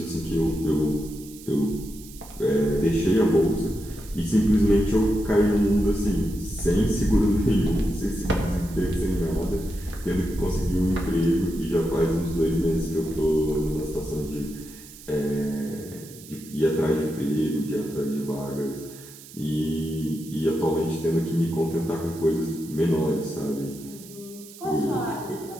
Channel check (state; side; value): noise; right; hiss, 18 dB below the sound